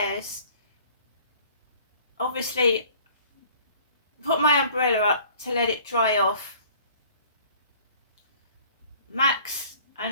obviously put my umbrella up to let it dry off. Max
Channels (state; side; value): inverted; both; correlation -0.52